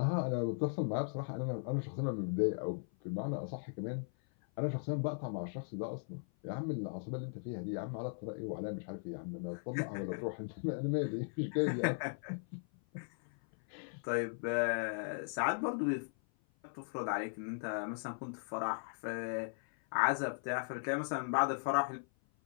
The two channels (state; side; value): silent; right; 52 dB below the other